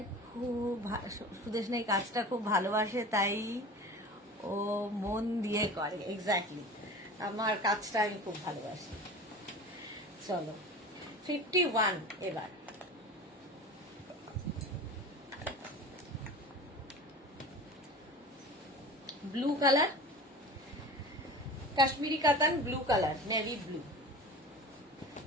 খুব সুদেশনা এই কাজটা খুব ভালোবাসে, তাই ও মন দিয়ে করে। এক্স্যাক্টলি, আমার কাজটা আমি খুব ভালোবাসি। চলো 51 এবার। ব্লু কালার, কাশ্মীরি কাতান, ব্লু কালার, নেভি ব্লু,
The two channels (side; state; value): both; normal; correlation 0.36